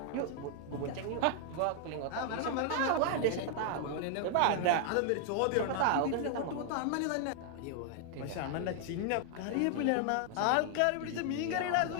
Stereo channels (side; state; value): both; different; correlation 0.00